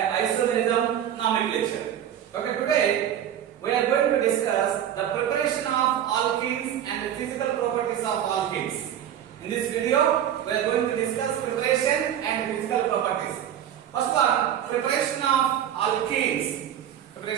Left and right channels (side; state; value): left; quieter; 10.3 dB